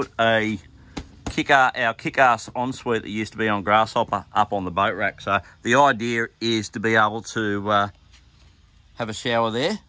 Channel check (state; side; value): identical; both; correlation 1.00